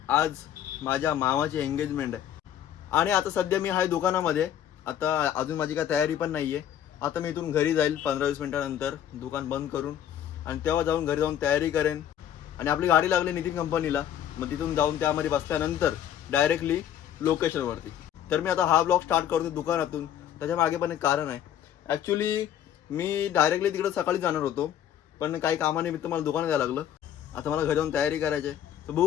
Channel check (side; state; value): right; quieter; 10.4 dB